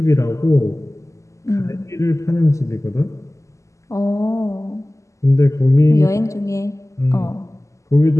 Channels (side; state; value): right; late; 0.15 ms